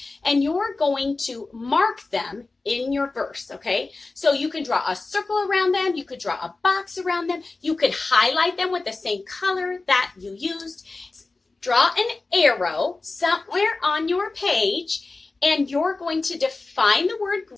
and you're going to mark them in your verse, okay? So you can draw a circle around them. You could draw a box around them. You could highlight them with the same color that you used. Draw an arrow somewhere on your page, and you're going to define the word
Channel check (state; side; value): quieter; right; 3.6 dB